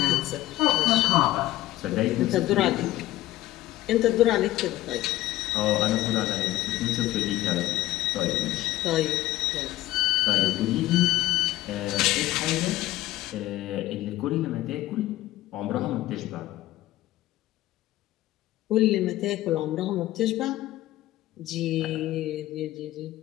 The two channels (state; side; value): quieter; right; 16.0 dB